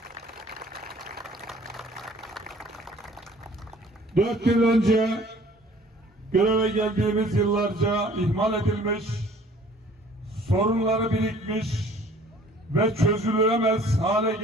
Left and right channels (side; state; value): both; normal; correlation 0.53